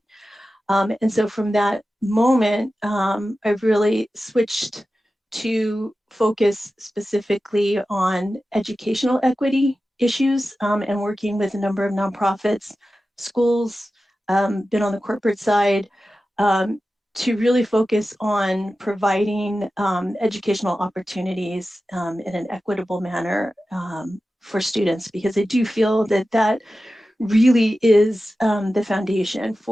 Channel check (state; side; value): normal; both; correlation 0.94